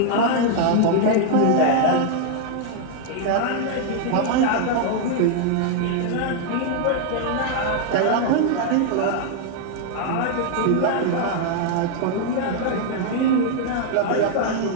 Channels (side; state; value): both; different; correlation 0.00